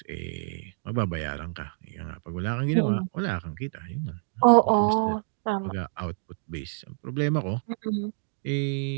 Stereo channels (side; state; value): left; silent; digital silence